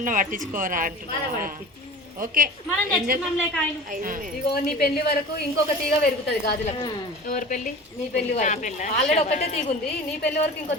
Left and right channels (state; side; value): normal; both; correlation 0.38